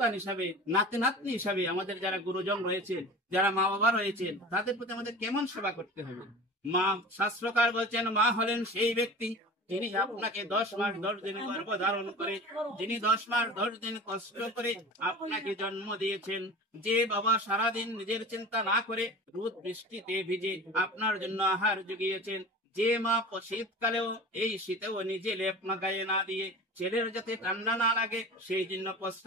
হিসাবে, নাতি নাতনি হিসাবে আমাদের যারা গুরুজন রয়েছেন, যারা মা বাবা রয়েছেন, তাদের প্রতি আমাদের কেমন সেবা করতে হবে। মা, শাস্ত্রকার বলছেন মা হলেন সেই ব্যক্তি যিনি আপনাকে 10 মাস 10 দিন গর্ভ ধারণ করে, যিনি 10 মাস 10 দিন কষ্ট করে আপনাকে জন্ম দিয়েছেন। যে বাবা সারাদিন নিজের চিন্তা না করে রোদ বৃষ্টিতে ভিজে আপনার জন্য আহার জুগিয়েছেন, যে মা শীতকালেও এই শীতেও নিজে লেপ না গায়ে না দিয়ে ছেলের যাতে ঠান্ডা না লাগে সেই জন্য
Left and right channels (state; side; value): normal; both; correlation 0.36